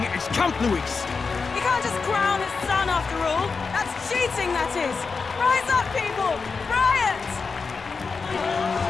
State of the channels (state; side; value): quieter; right; 4.8 dB